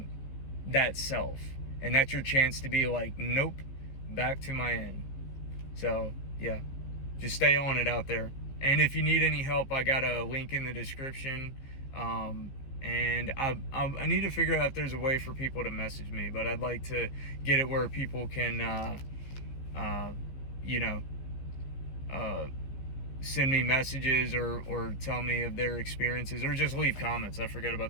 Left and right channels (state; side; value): late; right; 15 ms